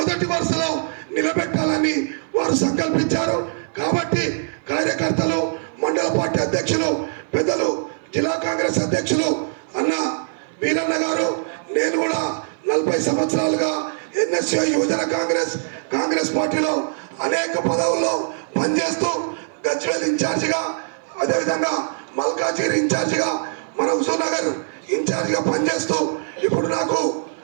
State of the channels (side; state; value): left; silent; 57 dB below the other